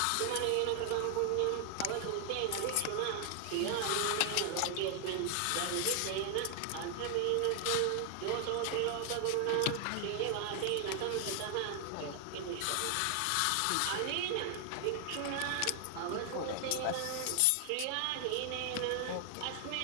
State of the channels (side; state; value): both; different; correlation 0.00